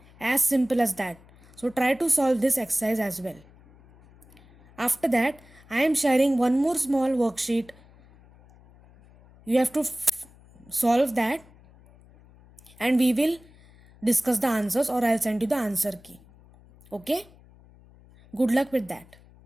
As simple as that. So try to solve this exercise as well. After that, I am sharing one more small worksheet. You have to solve that and we will discuss the answers or I'll send you the answer key. Okay? Good luck with that.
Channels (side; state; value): left; noise; hum, 26 dB below the sound